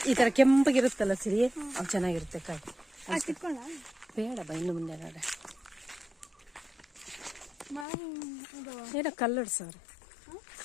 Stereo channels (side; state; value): right; drops out; at 7.9 s